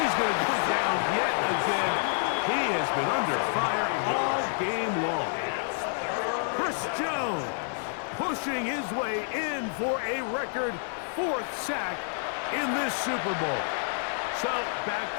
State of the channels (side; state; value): right; silent; digital silence